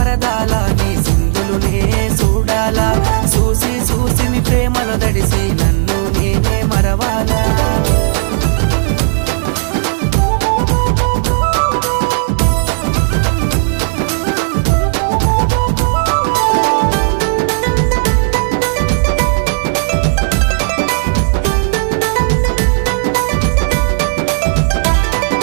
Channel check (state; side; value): silent; left; digital silence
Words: నీ సింధులునే చూడాలా చూసి చూసి మీ ప్రేమలో దడిసి నన్ను నేనే మరవాలా